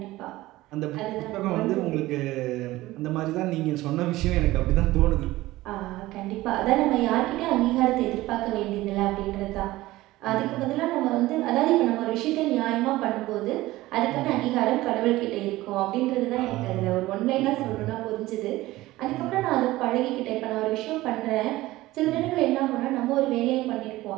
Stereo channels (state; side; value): quieter; left; 17.6 dB